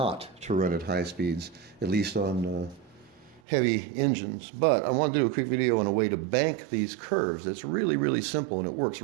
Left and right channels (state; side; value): drops out; left; at 3.4 s